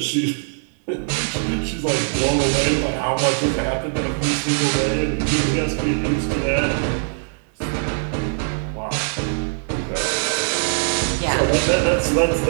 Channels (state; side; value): silent; left; digital silence